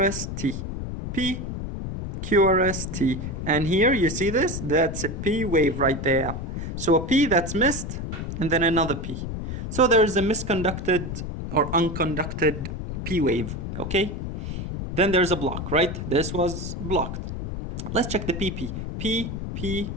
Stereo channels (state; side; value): noise; left; rumble, 5 dB below the sound